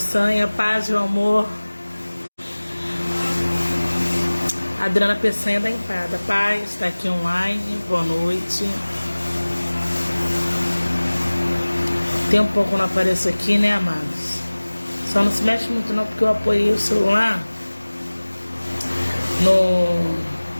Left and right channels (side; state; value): both; inverted; correlation -1.00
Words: paz e amor. Adriana Peçanha da Empada, paz, está aqui online, boa noite. Tem um pouco que eu não apareço aqui, né, amados? Só não se mexe muito não, porque eu apoiei o celular